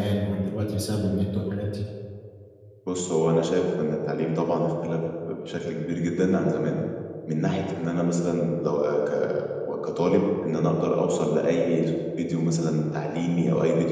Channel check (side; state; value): both; identical; correlation 1.00